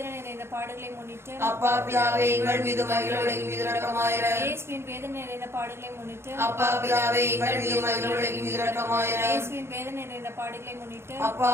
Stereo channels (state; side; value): late; left; 0.12 ms